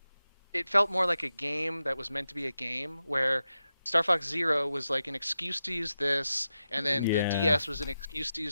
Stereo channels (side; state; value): both; inverted; correlation -0.90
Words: it felt more like a game that was meant to be a game where Star Fox Zero was like an excuse to use this, and then the yeah, DS was an excuse to